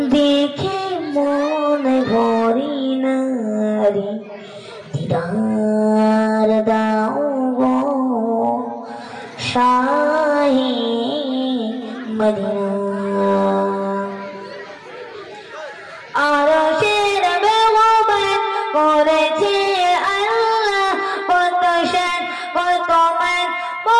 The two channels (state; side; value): identical; both; correlation 1.00